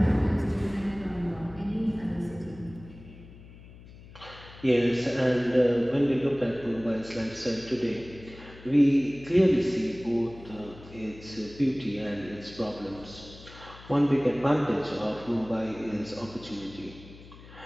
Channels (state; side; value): noise; left; hum, 19 dB below the sound